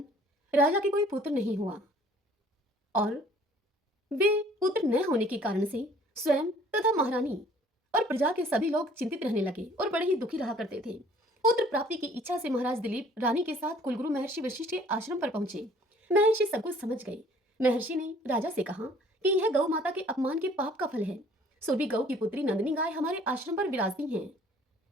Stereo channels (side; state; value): both; normal; correlation 0.55